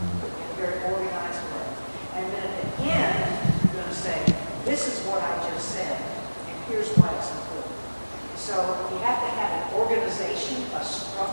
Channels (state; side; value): inverted; both; correlation -1.00